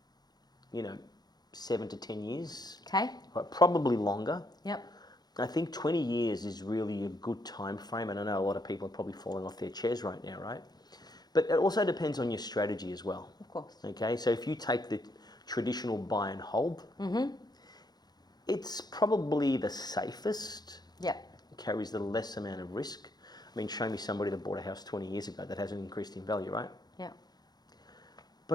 you know, 7 to 10 years. Okay. Right, probably longer. Yep. I think 20 years is really a good time frame, and I know a lot of people are probably falling off their chairs right now, right? But it also depends on your strategy as well. Of course. Okay, so if you take the traditional buy and hold, it's probably the safest, Yep. carries the less amount of risk. I mean, show me somebody that bought a house 20 years ago that hasn't increased in value, right? Yeah.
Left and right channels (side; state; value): right; late; 0.19 ms